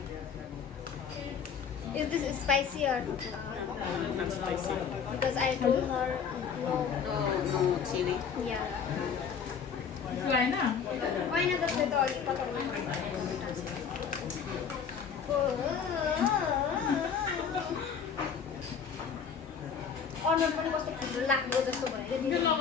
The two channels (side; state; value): right; quieter; 6.7 dB